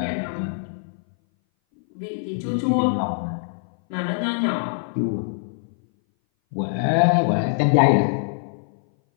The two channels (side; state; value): right; silent; 59 dB below the other